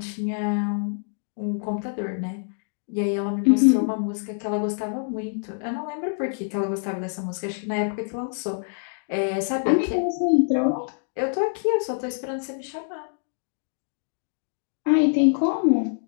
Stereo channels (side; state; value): right; silent; digital silence